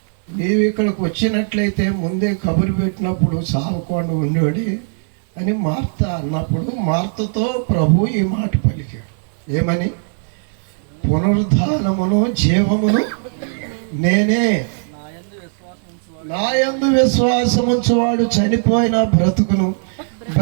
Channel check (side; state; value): left; silent; digital silence